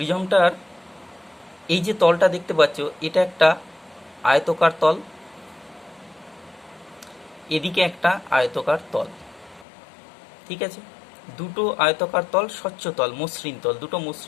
এই যে তলটা দেখতে পাচ্ছ, এটা একটা আয়তকার তল, এদিকে একটা আয়তকার তল। ঠিক আছে, দুটো আয়তকার তল, স্বচ্ছ তল, মসৃণ তল, দুটো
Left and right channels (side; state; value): right; drops out; at 9.7 s